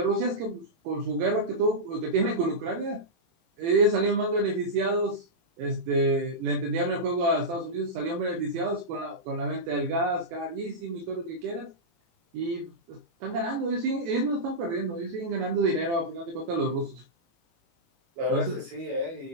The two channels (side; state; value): left; late; 18 ms